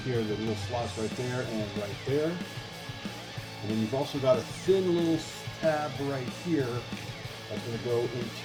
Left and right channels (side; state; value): both; identical; correlation 1.00